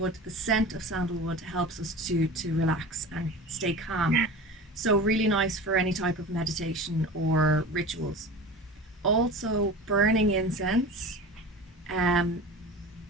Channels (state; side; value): normal; both; correlation 0.34